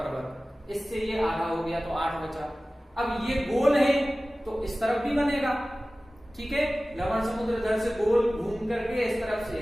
इससे ये आधा हो गया तो 8 बचा। अब ये गोल है तो इस तरफ भी बनेगा, ठीक है। लवण समुद्र इधर से गोल घूम करके इस तरफ से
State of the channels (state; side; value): normal; both; correlation 0.97